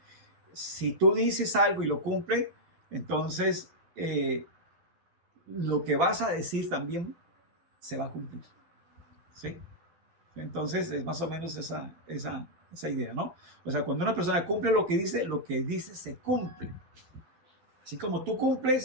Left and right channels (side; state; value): left; late; 12 ms